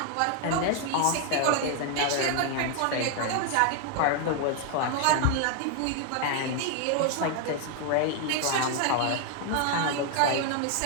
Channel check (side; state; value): both; different; correlation 0.00